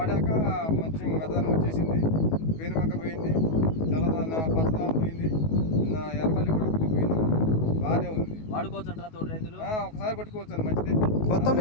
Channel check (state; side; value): late; right; 19 ms